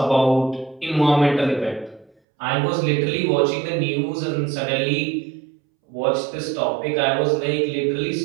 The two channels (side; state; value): left; drops out; at 2.1 s